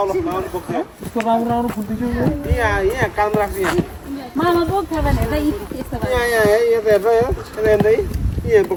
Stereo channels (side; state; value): both; identical; correlation 1.00